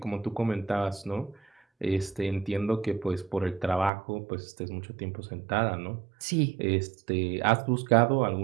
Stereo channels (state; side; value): drops out; left; at 3.9 s